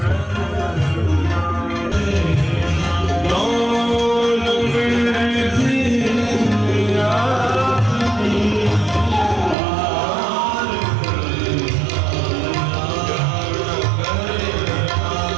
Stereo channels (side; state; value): left; drops out; at 9.6 s